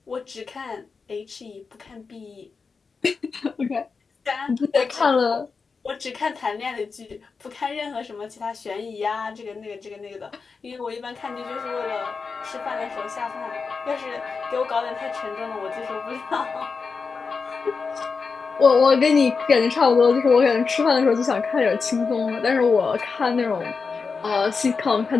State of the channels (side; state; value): right; quieter; 4.9 dB